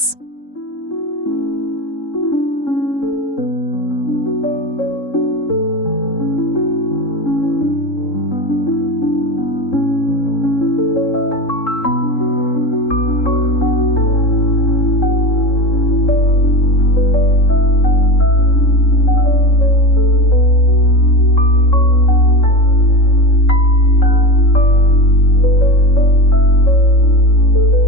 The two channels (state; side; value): late; right; 3.7 ms